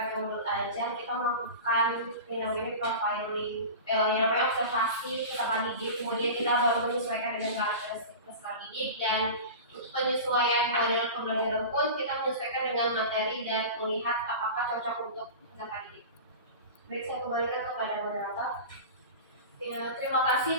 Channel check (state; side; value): inverted; both; correlation -0.31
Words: modul ajar, kita melakukan yang namanya profiling, yang namanya observasi peserta didik, kemudian kita baru menyesuaikan dengan karakteristik peserta didik, dan untuk penyesuaian model pembelajaran pun kita menyesuaikan dengan materi dan melihat apakah cocok untuk peserta didik. Baik, saya kembalikan kepada moderator. Ya, terima kasih